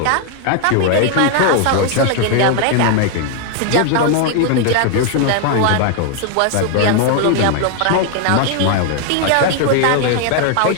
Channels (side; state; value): both; different; correlation 0.00